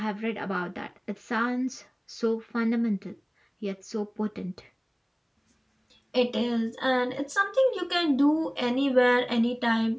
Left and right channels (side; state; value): both; identical; correlation 1.00